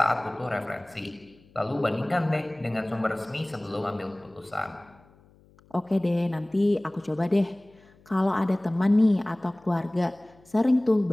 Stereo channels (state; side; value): noise; left; hum, 29 dB below the sound